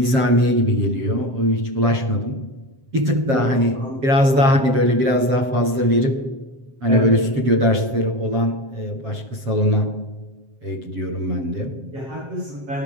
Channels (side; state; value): left; late; 7.6 ms